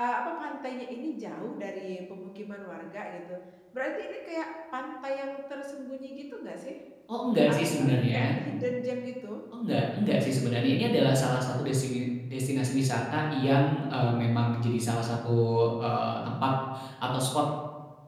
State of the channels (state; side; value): identical; both; correlation 1.00